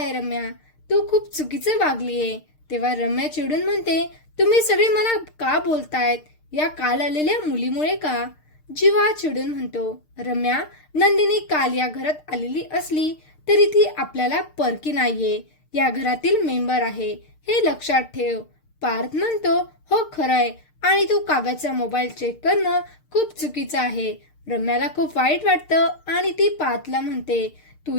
रम्या, तू खूप चुकीचं वागलीये. तेव्हा रम्या चिडून म्हणते, तुम्ही सगळे मला का बोलतायत, या काल आलेल्या मुलीमुळे का? जीवा चिडून म्हणतो, रम्या, नंदिनी काल या घरात आलेली असली तरी ती आपल्याला परकी नाहीये, या घरातील मेंबर आहे, हे लक्षात ठेव. पार्थ म्हणतो, हो खरंय, आणि तू काव्याचा मोबाईल चेक करणं खूप चुकीचं आहे. रम्याला खूप वाईट वाटतं आणि ती पार्थला म्हणते, तू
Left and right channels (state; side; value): late; right; 6.6 ms